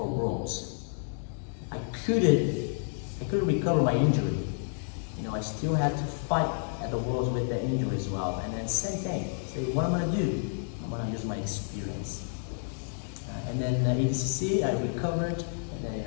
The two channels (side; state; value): right; silent; digital silence